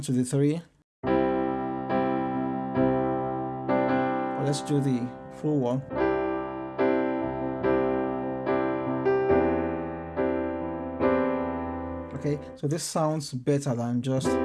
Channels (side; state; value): both; identical; correlation 1.00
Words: to the 3, or let's do the full one. Okay, so this sounds better than just